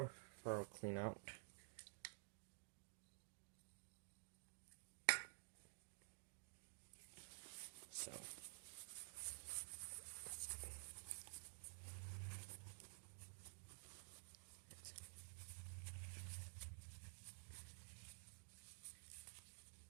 thorough clean out. So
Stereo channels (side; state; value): left; silent; digital silence